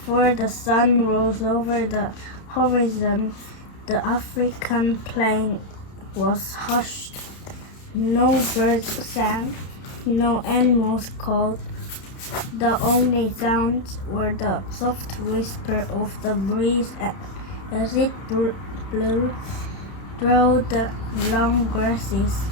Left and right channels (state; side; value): late; right; 31 ms